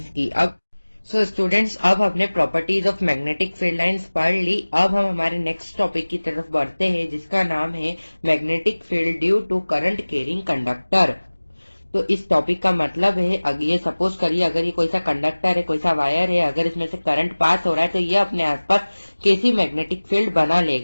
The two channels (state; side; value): inverted; both; correlation -1.00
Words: की। अब सो स्टूडेंट्स, अब हमने properties of magnetic field lines पढ़ ली। अब हम हमारे नेक्स्ट टॉपिक की तरफ बढ़ते हैं जिसका नाम है magnetic field due to current carrying conductor. तो इस टॉपिक का मतलब है ये सपोज करिए अगर ये कोई सा कंडक्टर है, कोई सा वायर है, अगर इसमें से करंट पास हो रहा है तो ये अपने आसपास कैसी मैग्नेटिक फील्ड बना